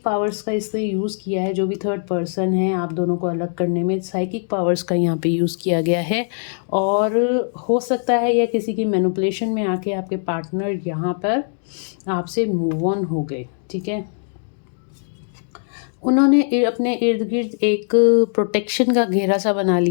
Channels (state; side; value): silent; right; digital silence